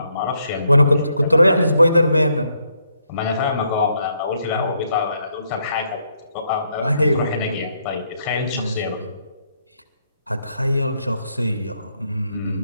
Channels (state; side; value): inverted; both; correlation -0.75